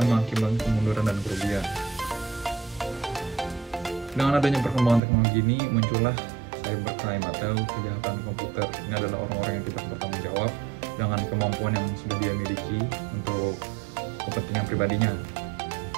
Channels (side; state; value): left; drops out; at 5.0 s